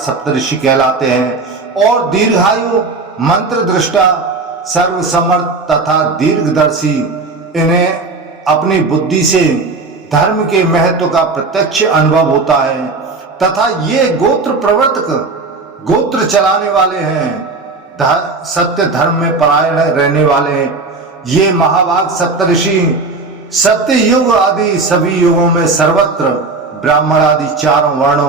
कहलाते हैं और दीर्घायु, मंत्र दृष्टा, सर्वसमर्थ तथा दीर्घदर्शी। इन्हें अपनी बुद्धि से धर्म के महत्व का प्रत्यक्ष अनुभव होता है तथा ये गोत्र प्रवर्तक, गोत्र चलाने वाले हैं, सत्य धर्म में परायण रहने वाले हैं। ये महाभाग सप्तऋषि सत्य युग आदि सभी युगों में सर्वत्र ब्राह्मण आदि 4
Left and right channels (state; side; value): quieter; left; 3.8 dB